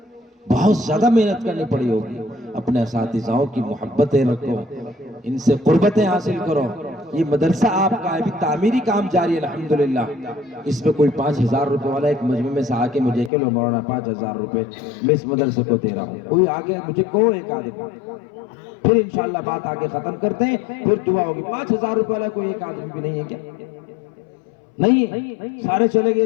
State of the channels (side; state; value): right; drops out; at 13.3 s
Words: بہت زیادہ محنت کرنی پڑی ہوگی۔ اپنے اساتذہوں کی محبتیں رکھو، ان سے قربتیں حاصل کرو۔ یہ مدرسہ آپ کا ابھی تعمیری کام جاری ہے الحمدللہ۔ اس میں کوئی 5,000 روپے والا ایک مجمع میں سے آ کے مجھے کہ لو مولانا 5,000 روپے میں اس مدرسے کو دے رہا ہوں، کوئی آگے مجھے کہو ایک آدمی، پھر انشاءاللہ بات آگے ختم کرتے ہیں، پھر دعا ہوگی۔ 5,000 روپے والا کوئی ایک آدمی بھی نہیں ہے کیا؟ نہیں ہے، سارے چلے